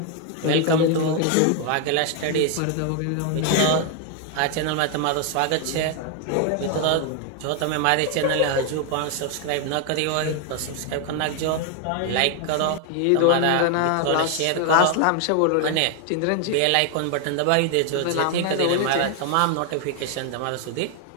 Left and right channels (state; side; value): different; both; correlation 0.01